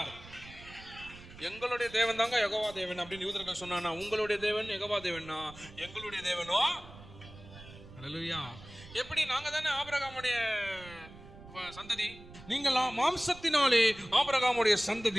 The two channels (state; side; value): noise; right; rumble, 18 dB below the sound